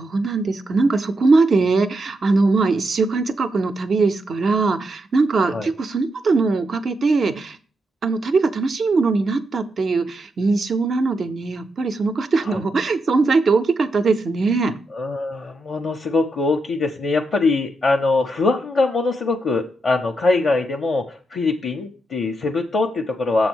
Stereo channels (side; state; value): both; normal; correlation 0.83